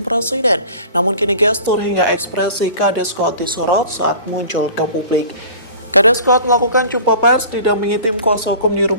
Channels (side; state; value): both; inverted; correlation -0.43